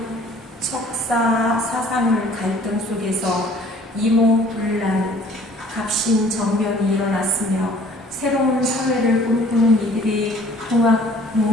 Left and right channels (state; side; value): normal; both; correlation 0.54